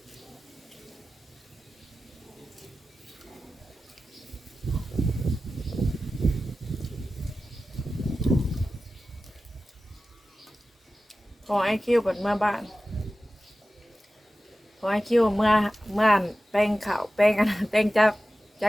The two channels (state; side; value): normal; both; correlation 0.95